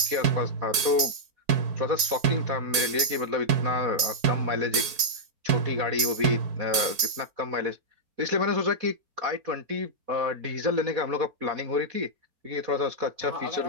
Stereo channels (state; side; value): late; left; 4.5 ms